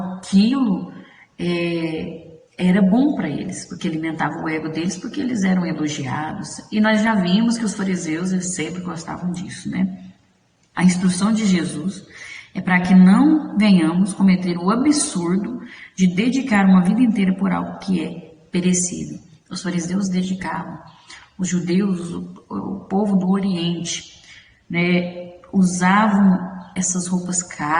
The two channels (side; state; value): both; identical; correlation 1.00